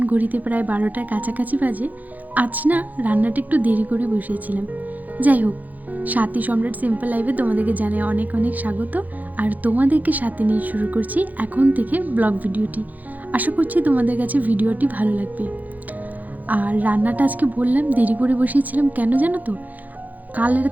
ঘড়িতে প্রায় 12টার কাছাকাছি বাজে। আজ না রান্নাটা একটু দেরি করে বসিয়েছিলাম। যাই হোক, সাথী সম্রাট সিম্পল লাইফে তোমাদেরকে জানাই অনেক অনেক স্বাগত। আর তোমাদেরকে সাথে নিয়ে শুরু করছি এখন থেকে ব্লগ ভিডিওটি। আশা করছি তোমাদের কাছে ভিডিওটি ভালো লাগবে। আর রান্নাটা আজকে বললাম দেরি করে বসিয়েছিলাম কেন জানো তো? কাল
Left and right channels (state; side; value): late; left; 0.081 ms